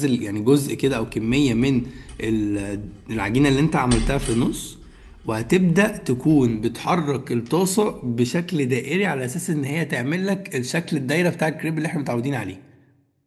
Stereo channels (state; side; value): identical; both; correlation 1.00